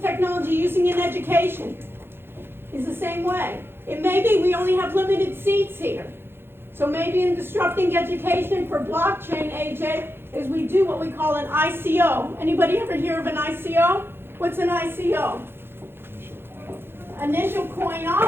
using in education. It's the same way. It may be we only have limited seats here. So maybe in disrupting education for blockchain, AJ, is we do what we call an ICO. Anybody ever hear of an ICO? What's an ICO? Initial coin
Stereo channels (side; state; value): left; late; 0.11 ms